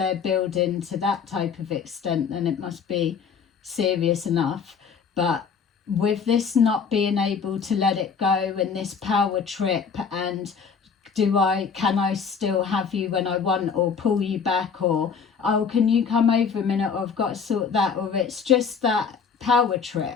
building to that type of extent, then it must be serious enough. But with this not being able to let it go and this power trip, and can I still have you when I want, or pull you back, or oh, can you come over a minute, or I've got to sort that, or it's just that power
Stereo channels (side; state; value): right; quieter; 6.1 dB